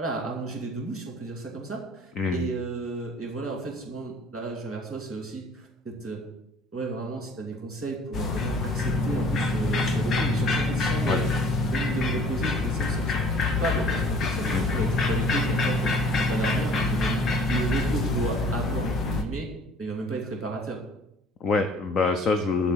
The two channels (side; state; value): both; normal; correlation 0.51